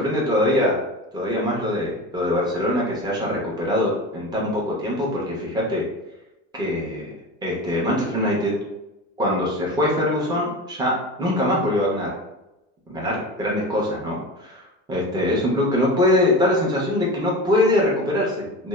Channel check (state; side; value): normal; both; correlation 0.29